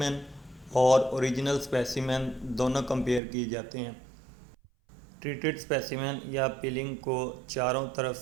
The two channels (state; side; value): drops out; left; at 3.2 s